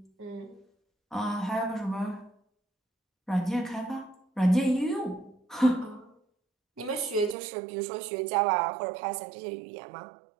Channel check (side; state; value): left; drops out; at 7.4 s